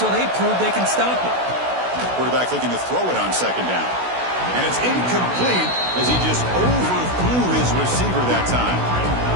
they prove they can stop it. Quarterback looking to throw it on 2nd down. And it's incomplete as he just overthrew his receiver that time.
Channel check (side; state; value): left; late; 16 ms